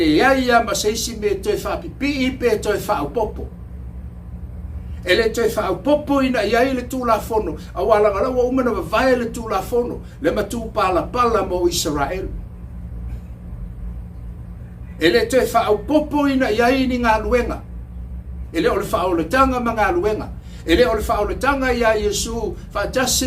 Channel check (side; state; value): both; identical; correlation 1.00